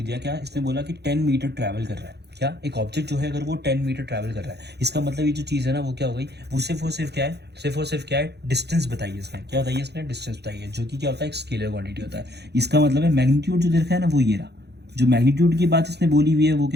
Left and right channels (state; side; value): late; left; 0.48 ms